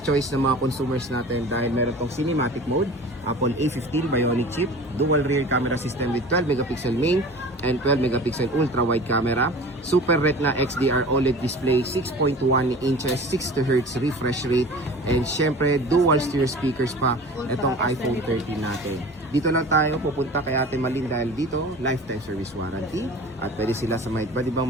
choice ng mga consumers natin dahil meron tong cinematic mode, Apple A15 Bionic chip, dual rear camera system with 12 megapixel main and 12 megapixel ultra wide camera, Super Retina XDR OLED display, 6.1 inches, 60 Hz refresh rate, and syempre dual stereo speakers pa itong iPhone 13 natin. Dito lang tayo pupunta kay Ate Malin dahil dito lifetime service warranty at pwede sila sa mga iba't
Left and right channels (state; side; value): normal; both; correlation 0.40